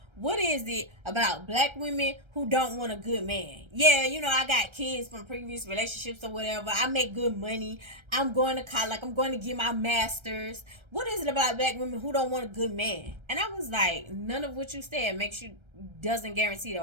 What is it about black women who don't want a good man? Yeah, you know, I got kids from previous relationships or whatever. I make good money. I'm going to college. Like, I'm going to get my master's. What is it about black women who don't want a good man? And I was like, none of what you said doesn't guarantee that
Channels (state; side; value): late; left; 1.3 ms